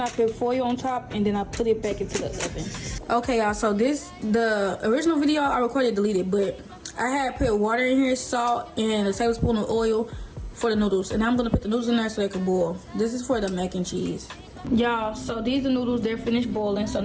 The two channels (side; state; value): both; identical; correlation 1.00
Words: I put foil on top and then I put it back into the oven. Okay, y'all, so the original video I recorded deleted, but I had put water in here, salt, and a tablespoon of oil for the noodles. And I'm gonna put the noodles in there so they can boil. This is for the mac and cheese. Y'all, so these are the noodles, they're finished boiling. So